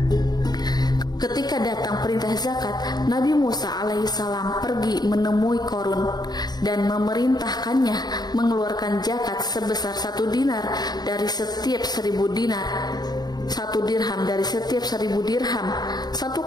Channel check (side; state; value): right; late; 0.20 ms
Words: Ketika datang perintah zakat, Nabi Musa alaihissalam pergi menemui Korun dan memerintahkannya mengeluarkan zakat sebesar 1 dinar dari setiap 1000 dinar, 1 dirham dari setiap 1000 dirham, 1